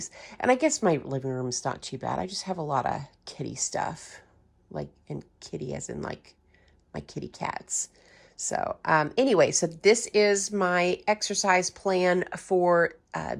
And I guess my living room is not too bad. I just have a lot of kitty stuff, like, and kitty as in like my kitty cats. So anyway, so this is my exercise plan for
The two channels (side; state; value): both; identical; correlation 1.00